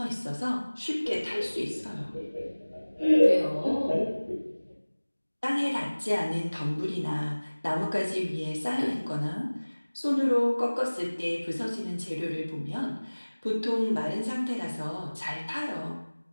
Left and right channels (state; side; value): inverted; both; correlation -1.00